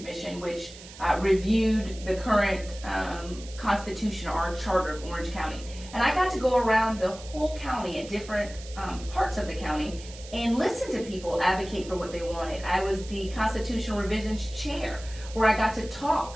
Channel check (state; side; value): noise; right; hiss, 17 dB below the sound